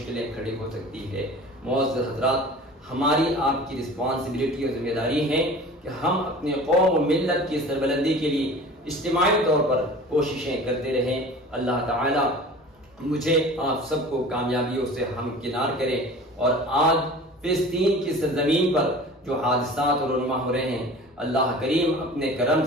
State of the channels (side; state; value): both; normal; correlation 0.41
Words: کھڑی ہو سکتی ہے۔ معزز حضرات، ہماری آپ کی رسپانسبلٹی اور ذمہ داری ہے کہ ہم اپنے قوم و ملت کی سربلندی کے لیے اجتماعی طور پر کوششیں کرتے رہیں۔ اللہ تعالی مجھے آپ سب کو کامیابیوں سے ہمکنار کرے، اور آج فلسطین کی سرزمین پر جو حادثات اور رونما ہو رہے ہیں، اللہ کریم اپنے کرم